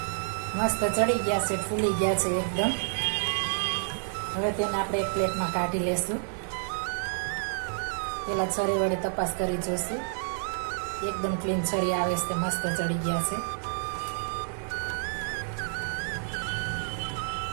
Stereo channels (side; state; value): left; silent; digital silence